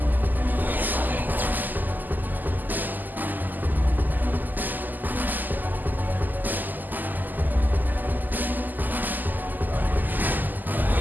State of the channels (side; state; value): left; late; 0.086 ms